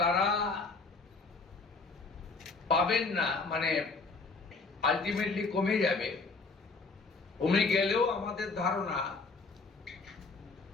তারা পাবেন না, মানে আলটিমেটলি কমে যাবে। কমে গেলেও আমাদের ধারণা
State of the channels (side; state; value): right; quieter; 4.0 dB